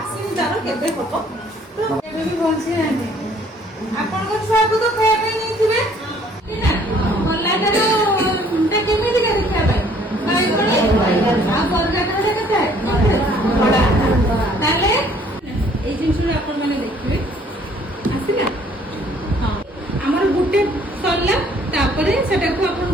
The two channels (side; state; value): both; normal; correlation 0.60